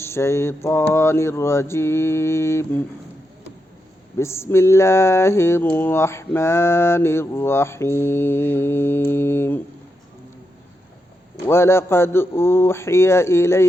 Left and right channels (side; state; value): both; normal; correlation 0.85